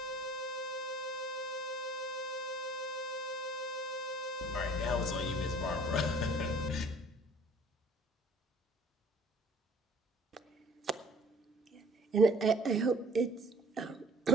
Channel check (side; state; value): both; normal; correlation 0.53